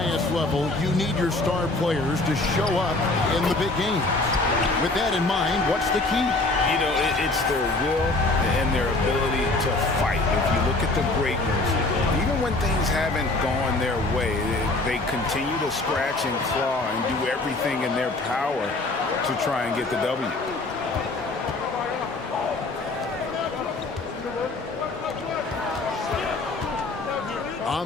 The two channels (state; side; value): quieter; right; 3.1 dB